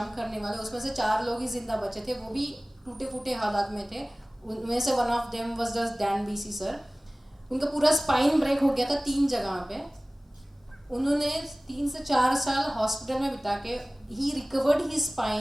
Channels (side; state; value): both; normal; correlation 0.98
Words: करने वाले, उसमें से 4 लोग ही जिंदा बचे थे, वो भी टूटे फूटे हालात में थे। उनमें से one of them was the Dan BC sir. उनका पूरा स्पाइन ब्रेक हो गया था 3 जगह पे। उन्होंने 3 से 4 साल हॉस्पिटल में बिता के he recovered his